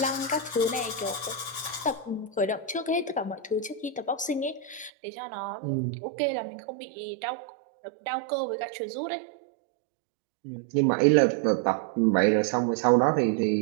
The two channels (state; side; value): drops out; left; at 4.9 s